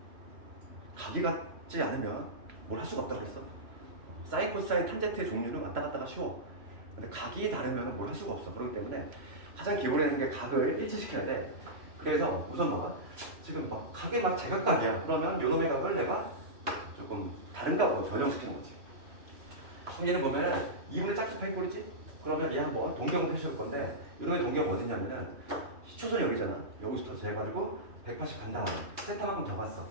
각이 같지 않으면 뭘 할 수가 없다고 그랬어. 사인, 코사인, 탄젠트의 종류는 왔다 갔다가 쉬워. 근데 각이 다르면 뭘 할 수가 없어. 그렇기 때문에 가장 기본에 있는 게 각을 일치시켜야 돼. 그래서 우선 봐봐. 지금 막 각이 막 제각각이야. 그러면 요놈의 각을 내가 조금 다른 각으로 변형시키는 거지. 그럼 얘는 보면 2분의 짝수 파이 꼴이지? 그러면 얘 한번 동경을 표시할 건데, 요놈의 동경 어디냐면은 시초선이 여기잖아. 여기서부터 재가지고 180 간 다음에 세타만큼 더 갔어.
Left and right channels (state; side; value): late; left; 3.0 ms